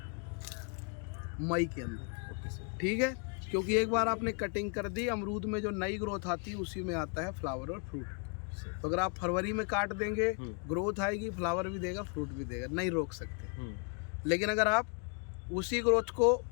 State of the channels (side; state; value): right; quieter; 38.3 dB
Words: मई के अंदर। ठीक है, क्योंकि एक बार आपने कटिंग कर दी, अमरूद में जो नई ग्रोथ आती है उसी में आता है फ्लावर और फ्रूट। तो अगर आप फरवरी में काट देंगे, ग्रोथ आएगी, फ्लावर भी देगा, फ्रूट भी देगा, नहीं रोक सकते। लेकिन अगर आप उसी ग्रोथ को,